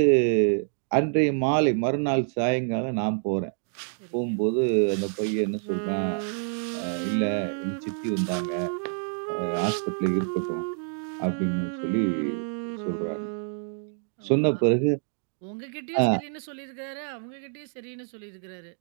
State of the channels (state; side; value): silent; left; 60 dB below the other